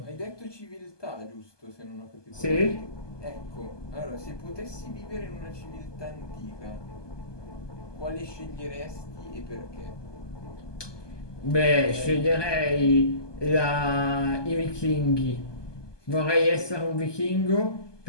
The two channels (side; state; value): right; late; 1.2 ms